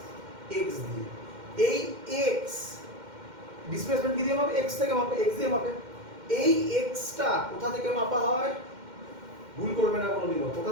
x দিয়ে। এই x ডিসপ্লেসমেন্ট কি দিয়ে মাপে? x থেকে মাপে, x দিয়ে মাপে। এই x টা কোথা থেকে মাপা হয়? ভুল করবে না কোনোদিনও, কোথা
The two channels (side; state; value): left; late; 2.1 ms